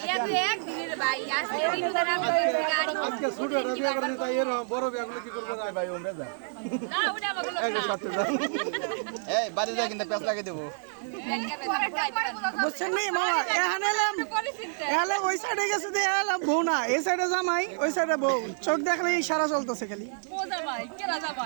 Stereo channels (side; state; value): left; silent; digital silence